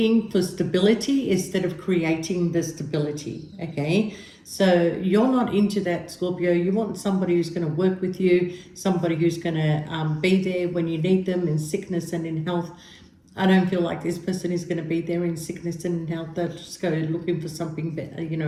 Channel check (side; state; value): both; identical; correlation 1.00